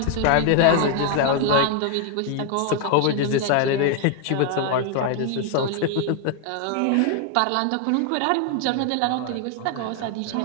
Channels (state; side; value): different; both; correlation 0.00